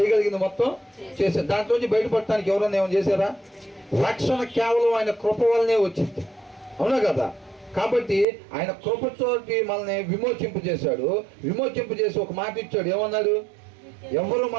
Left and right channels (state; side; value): drops out; left; at 8.2 s